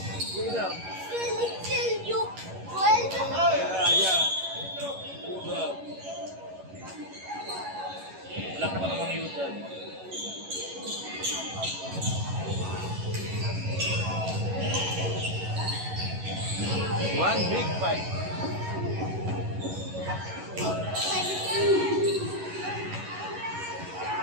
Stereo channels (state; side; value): late; left; 11 ms